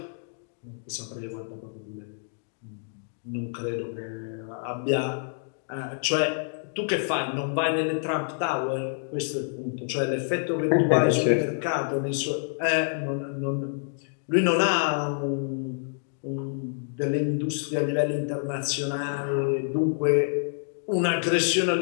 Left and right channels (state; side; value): silent; right; digital silence